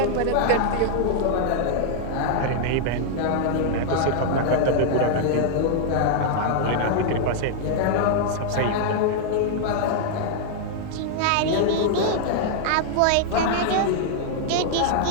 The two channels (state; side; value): different; both; correlation -0.01